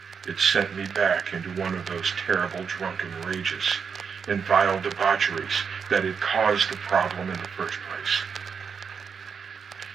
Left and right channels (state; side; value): quieter; left; 6.3 dB